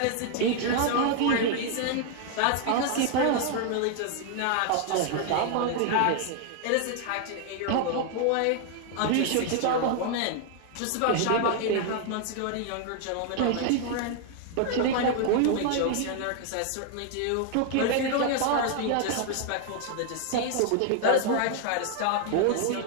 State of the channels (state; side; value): different; both; correlation 0.00